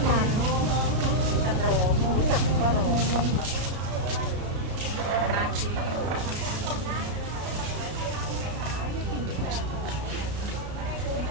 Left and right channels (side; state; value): left; late; 33 ms